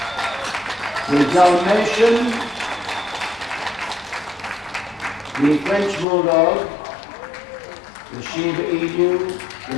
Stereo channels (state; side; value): drops out; right; at 6.1 s